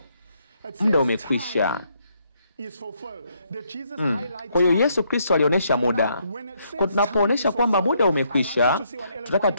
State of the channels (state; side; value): inverted; both; correlation -0.73